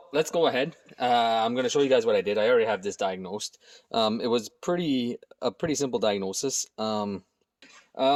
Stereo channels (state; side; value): identical; both; correlation 1.00